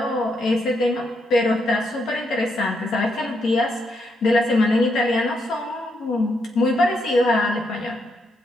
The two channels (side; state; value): both; normal; correlation 0.78